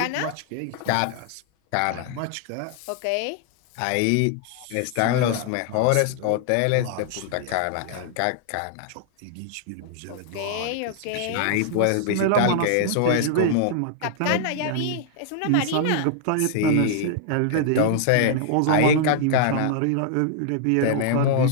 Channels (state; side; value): different; both; correlation -0.01